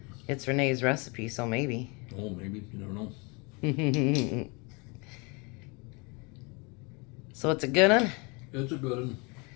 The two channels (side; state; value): right; quieter; 29.9 dB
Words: It's Renee's recipe, so maybe. Oh, maybe. You never know. So it's a good one? It's a good one.